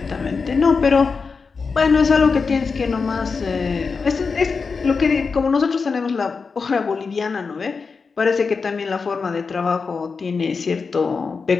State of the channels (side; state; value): right; quieter; 4.9 dB